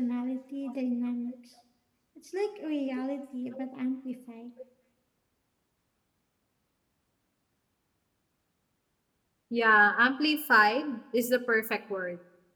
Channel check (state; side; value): identical; both; correlation 1.00